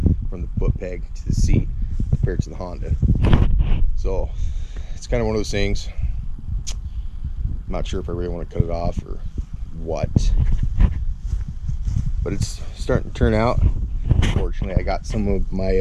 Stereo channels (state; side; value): identical; both; correlation 1.00